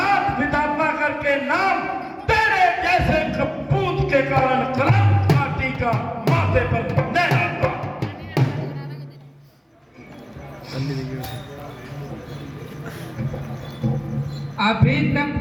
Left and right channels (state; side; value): identical; both; correlation 1.00